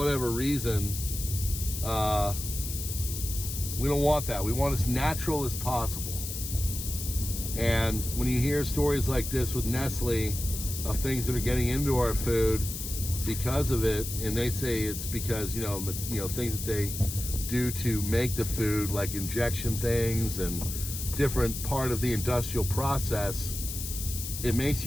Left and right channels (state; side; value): noise; left; hiss, 6 dB below the sound